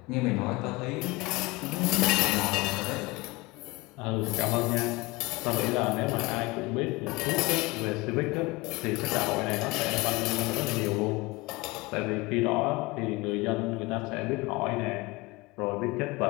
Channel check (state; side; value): quieter; right; 22.9 dB